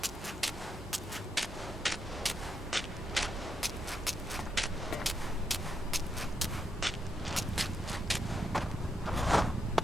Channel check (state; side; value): normal; both; correlation 0.81